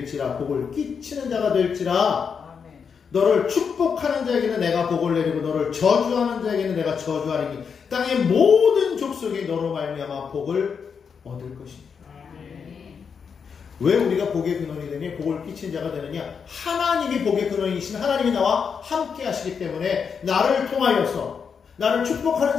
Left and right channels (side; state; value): right; quieter; 6.3 dB